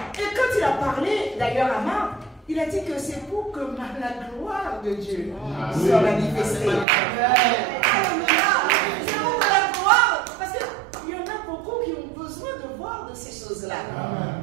Et quand il a parlé, d'ailleurs à Marthe, il a dit que c'est pour que la gloire de Dieu soit manifestée. Alléluia. C'est pour la gloire. Parce qu'il y en a beaucoup qui ont besoin de voir de ces choses-là.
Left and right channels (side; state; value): left; drops out; at 6.9 s